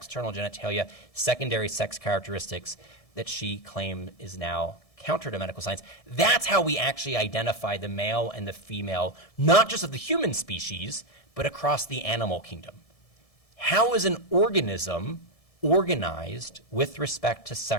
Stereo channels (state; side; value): late; right; 1.7 ms